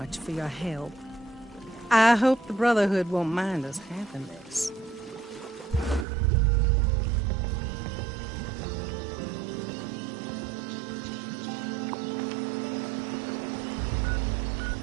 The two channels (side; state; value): left; drops out; at 6.1 s